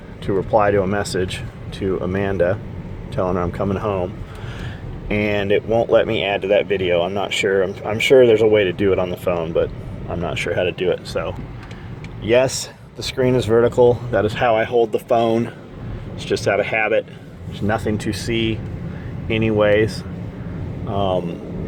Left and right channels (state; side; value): identical; both; correlation 1.00